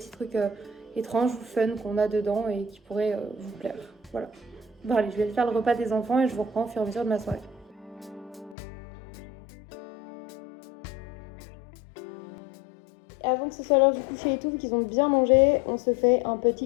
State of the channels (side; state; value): right; drops out; at 8.6 s